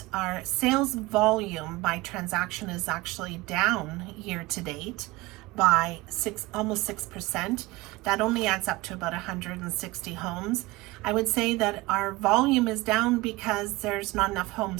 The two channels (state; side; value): quieter; left; 21.1 dB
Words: our sales volume by transaction is actually down year to date by almost 6%. That only adds up to about 160 homes. I would say that our volume is down because there's not enough